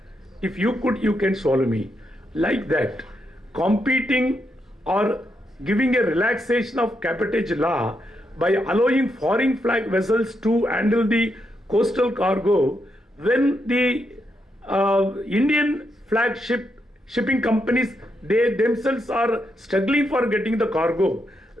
If you could, you can swallow me. Like that, competing or giving a relaxation of cabotage law by allowing foreign flag vessels to handle the coastal cargo, when the Indian flagship shipping companies, they themselves are struggling for getting the cargo,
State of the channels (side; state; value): both; normal; correlation 0.81